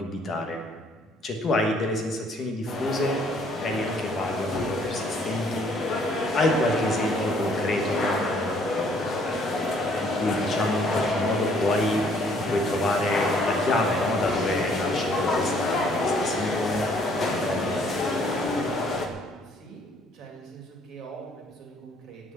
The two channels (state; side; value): normal; both; correlation 0.63